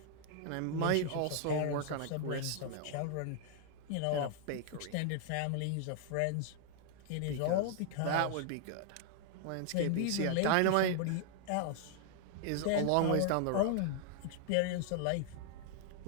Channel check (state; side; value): different; both; correlation 0.00